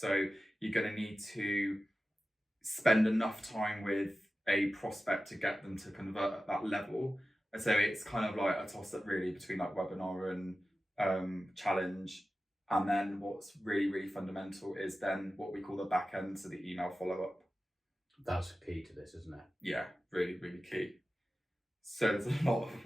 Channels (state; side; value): normal; both; correlation 0.94